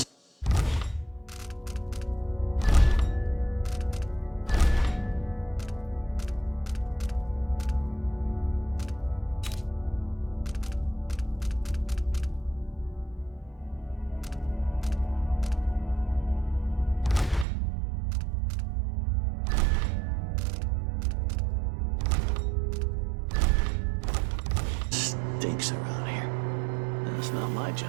stinks around here. It's not my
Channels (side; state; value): left; drops out; at 17.4 s